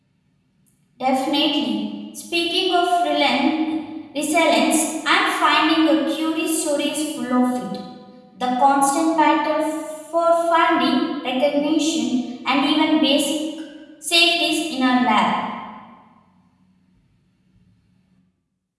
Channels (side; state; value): both; identical; correlation 1.00